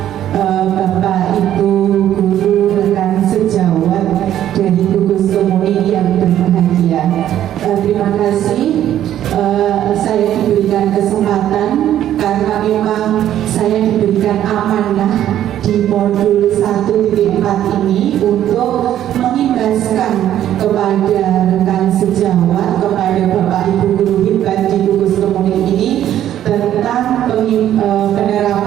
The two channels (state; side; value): quieter; left; 11.5 dB